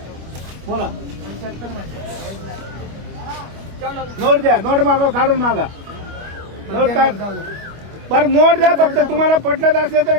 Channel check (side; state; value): left; late; 25 ms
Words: बोला. नोट द्या. नोट मागा काढून मागा. नोट काढ. बरं नोट द्या. फक्त तुम्हाला पटलं असलं तर